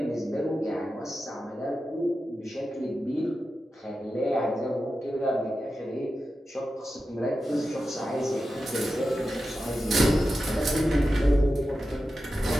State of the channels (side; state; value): both; normal; correlation 0.91